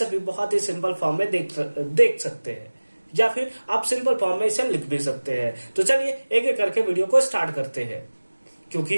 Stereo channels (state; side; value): inverted; both; correlation -1.00